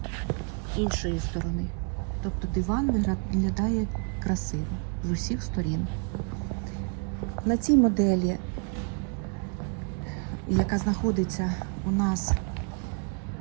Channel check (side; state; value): left; quieter; 35.9 dB